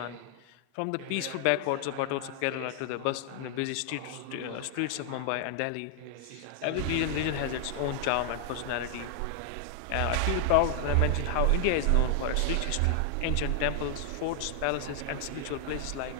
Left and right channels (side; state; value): both; different; correlation 0.00